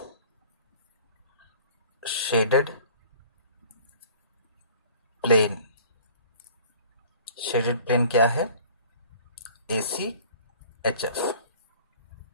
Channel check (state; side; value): inverted; both; correlation -0.48